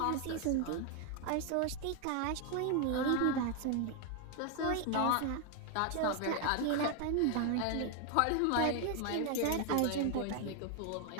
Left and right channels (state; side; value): different; both; correlation 0.01